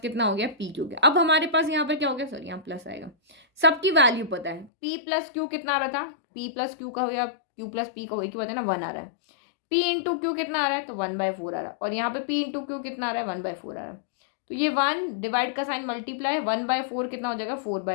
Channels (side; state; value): right; drops out; at 4.7 s